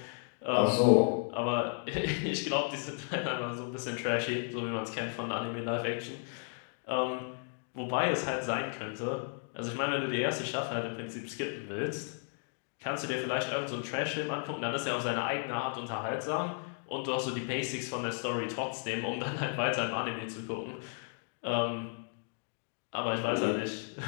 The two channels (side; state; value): right; silent; 55 dB below the other